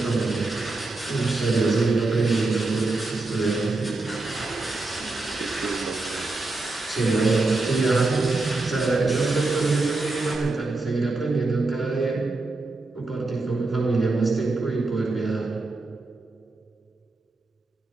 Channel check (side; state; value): left; quieter; 3.3 dB